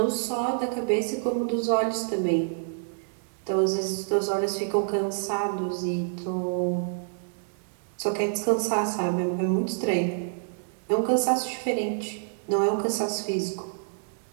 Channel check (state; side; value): silent; left; digital silence